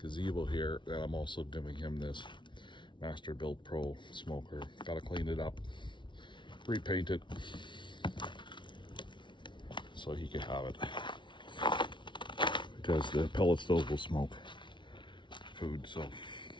here. And I'm also giving him this Master Built Pro smoker. Gotta clean it up, repaint it, so he can have it. Because the pellet stove will smoke food, so,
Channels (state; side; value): late; right; 0.24 ms